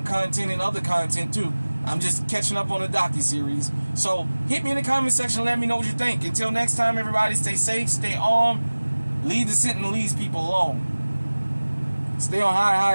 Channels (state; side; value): inverted; both; correlation -1.00